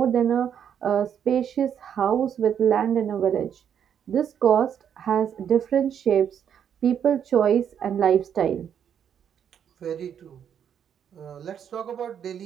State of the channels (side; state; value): left; quieter; 8.6 dB